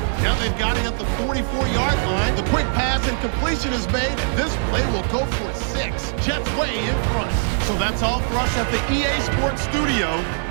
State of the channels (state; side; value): silent; left; 65 dB below the other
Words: Now they've got it at the 44-yard line. The quick pass and completion is made, and this play will go for 6. Jets way in front. So that's all for us at the EA Sports Studio.